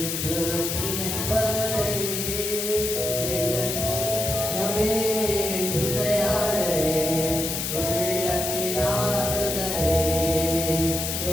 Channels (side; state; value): left; noise; hiss, 2 dB below the sound